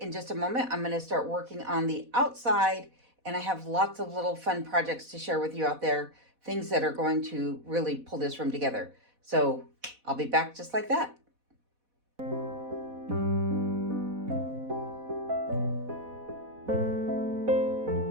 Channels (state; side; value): late; left; 4.1 ms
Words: just a moment, I'm going to start working on the outside. And I have lots of little fun projects to share with you out there, things that are going to really pull this room together. So I'll be back just like that.